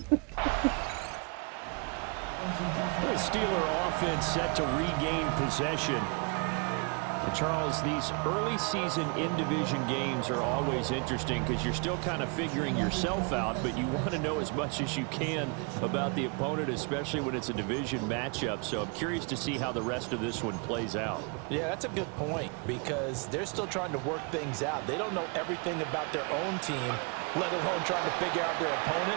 The Steeler offense set to regain possession. And Charles, these early season in-division games are always interesting because you're still kind of figuring yourself out, but you want to know as much as you can about the opponent, especially when it's a division matchup. So I'm curious to see how the rest of this one plays out. Yeah, that's a good point because they're still trying to work things out. They don't know everything about their own team, let alone trying to figure out their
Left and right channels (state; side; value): quieter; left; 34.2 dB